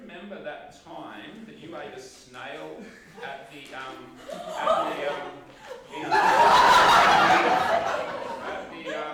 that time that you ate a snail at the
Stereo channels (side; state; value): both; identical; correlation 1.00